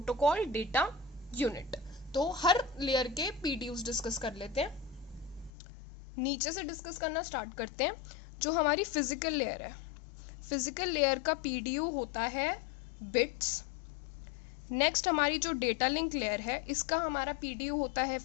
डेटा, यूनिट। तो हर लेयर के पीडीयूज डिस्कस कर लेते हैं। नीचे से डिस्कस करना स्टार्ट करते हैं। जो हमारी फिजिकल लेयर है, फिजिकल लेयर का पीडीयू होता है बिट्स। नेक्स्ट हमारी जो डेटा लिंक लेयर है, इसका हमारा पीडीयू होता है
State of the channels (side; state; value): right; drops out; at 5.5 s